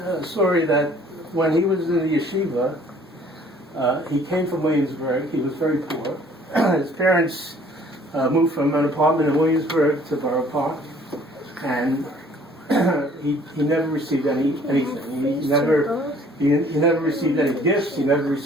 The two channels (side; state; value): both; normal; correlation 0.56